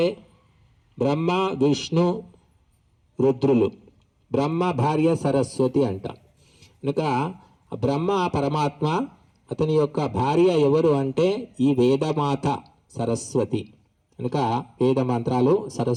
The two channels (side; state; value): both; identical; correlation 1.00